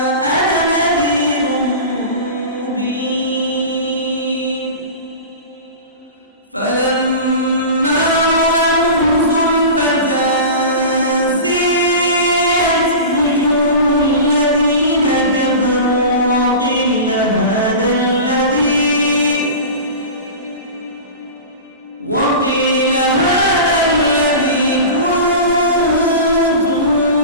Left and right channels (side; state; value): both; inverted; correlation -0.31